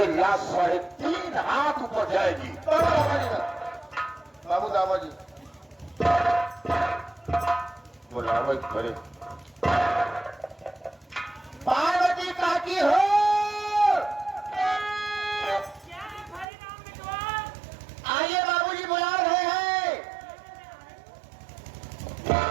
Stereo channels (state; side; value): drops out; left; at 16.4 s